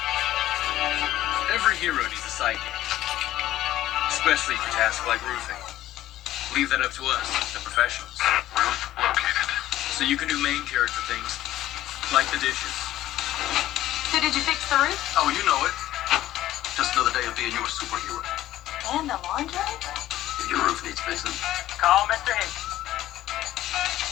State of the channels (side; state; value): right; quieter; 14.1 dB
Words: every hero needs a sidekick, especially for tasks like roofing. Leave that up to us, the professionals. Roof located. So you can do main character things, like the dishes. so did you fix the roof? Oh, you know it. Just another day of being your superhero. And the laundry? If your roof needs fixing, Call Mr. Hicks.